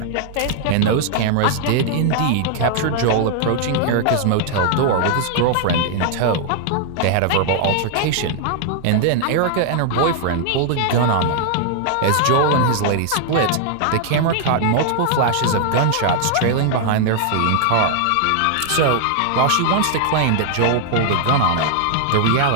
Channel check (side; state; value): both; different; correlation -0.01